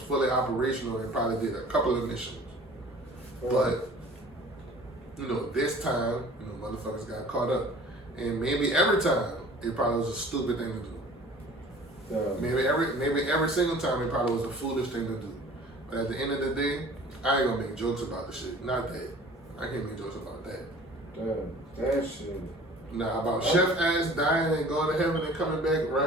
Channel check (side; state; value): both; normal; correlation 0.47